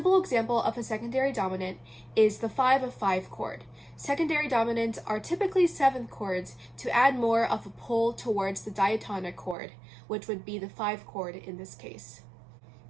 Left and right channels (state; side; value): drops out; left; at 9.6 s